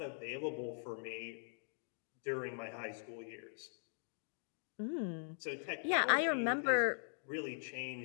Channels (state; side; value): silent; right; digital silence